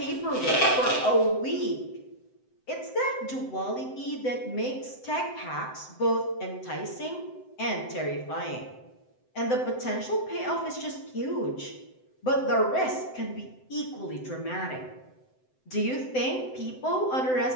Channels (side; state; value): right; late; 7.8 ms